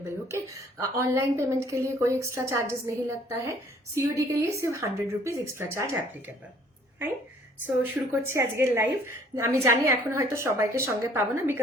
Okay. Online payment के लिए कोई extra charges नहीं लगता है। COD के लिए सिर्फ 100 rupees extra charge applicable. Fine. So শুরু করছি আজকের লাইভ। আমি জানি এখন হয়তো সবাইকে সঙ্গে পাবো না,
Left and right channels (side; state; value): both; normal; correlation 0.57